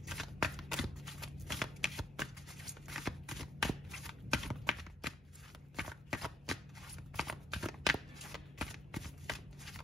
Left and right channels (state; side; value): normal; both; correlation 0.68